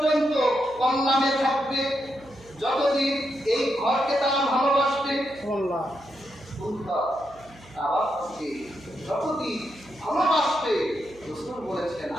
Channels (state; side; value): noise; right; hum, 23 dB below the sound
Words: কল্যাণে থাকবে যতদিন এই ঘরকে তারা ভালোবাসবে। আল্লাহ আবার যতদিন ভালোবাসবে রাসূল বলেছেন